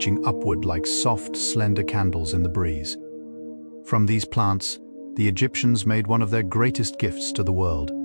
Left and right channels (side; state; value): both; inverted; correlation -1.00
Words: upward like soft, slender candles in the breeze. From these plants, the Egyptians made one of their greatest gifts to the world,